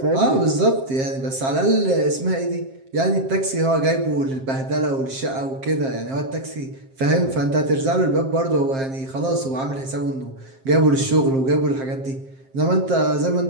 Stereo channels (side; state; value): left; late; 7.5 ms